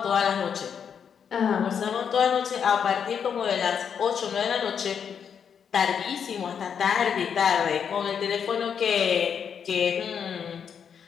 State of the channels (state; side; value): quieter; right; 7.4 dB